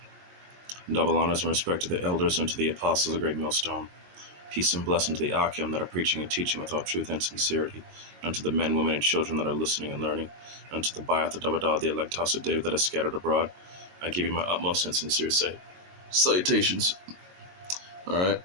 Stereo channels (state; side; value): late; left; 22 ms